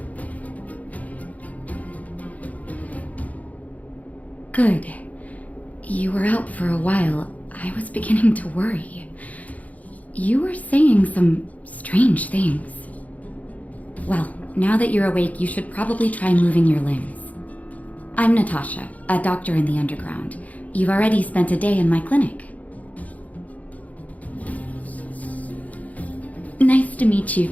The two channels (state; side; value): late; right; 0.073 ms